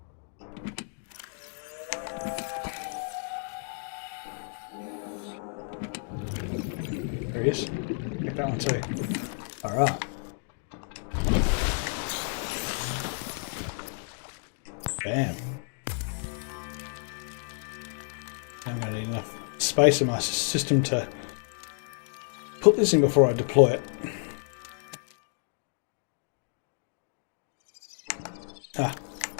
There he is. Get that one too. Alright. Bam. I'm going to need enough space in my system to put this in before I deploy it. Ah.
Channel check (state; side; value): silent; right; 58 dB below the other